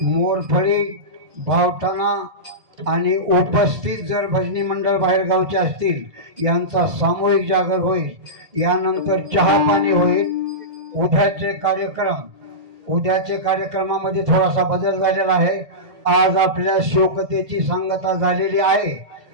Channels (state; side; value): late; left; 2.0 ms